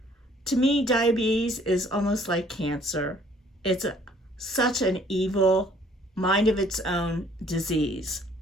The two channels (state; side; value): normal; both; correlation 0.59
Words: To me, diabetes is almost like cancer. It's such an evil, mind of its own disease.